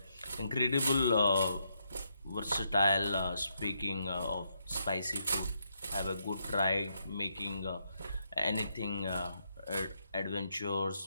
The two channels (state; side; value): inverted; both; correlation -0.79